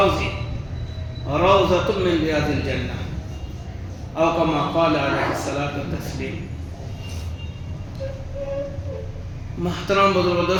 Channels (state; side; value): identical; both; correlation 1.00